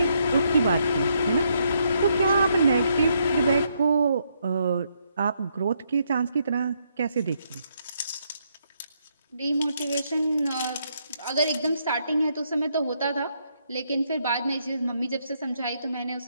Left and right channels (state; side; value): inverted; both; correlation -0.75